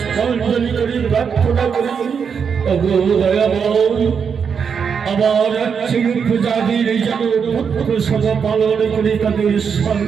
করে প্রার্থনা করি, ওগো দয়াময়, আমার রাজ্যের প্রজাদের যেন পুত্র সম পালন করে তাদের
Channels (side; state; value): left; quieter; 6.6 dB